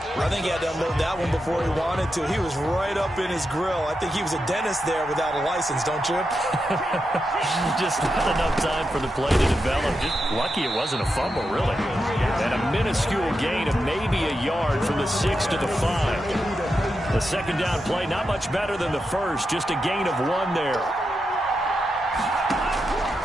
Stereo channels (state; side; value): normal; both; correlation 0.87